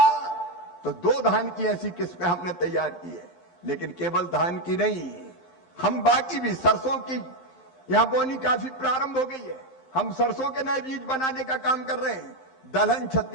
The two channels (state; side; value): late; right; 11 ms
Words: तो 2 धान की ऐसी किस्में हमने तैयार की है। लेकिन केवल धान की नहीं, हम बाकी भी, सरसों की यहां बोनी काफी प्रारंभ हो गई है। हम सरसों के नए बीज बनाने का काम कर रहे हैं। दलहन